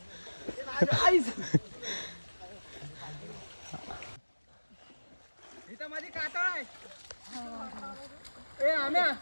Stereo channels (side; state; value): both; inverted; correlation -1.00